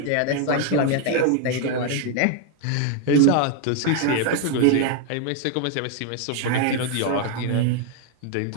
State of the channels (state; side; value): different; both; correlation 0.00